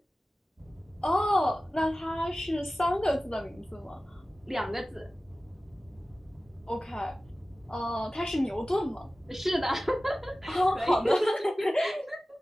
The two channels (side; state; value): both; normal; correlation 0.96